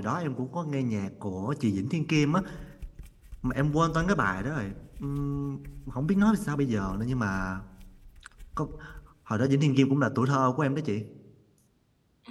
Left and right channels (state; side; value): identical; both; correlation 1.00